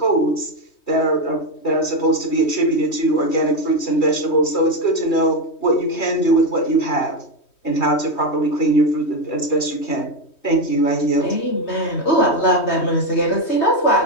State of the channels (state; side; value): late; right; 3.1 ms